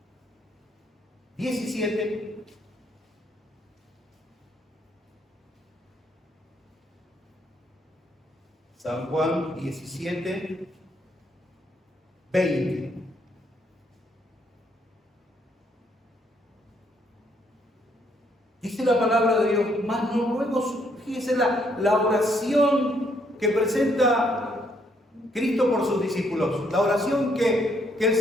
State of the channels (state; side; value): normal; both; correlation 0.71